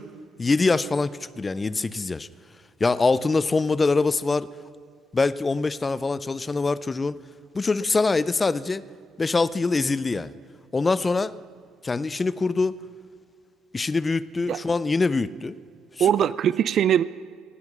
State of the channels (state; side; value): normal; both; correlation 0.87